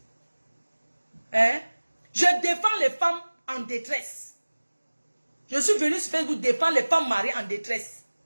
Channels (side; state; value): both; inverted; correlation -1.00